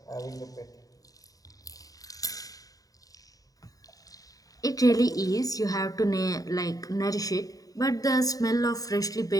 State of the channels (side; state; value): right; late; 0.18 ms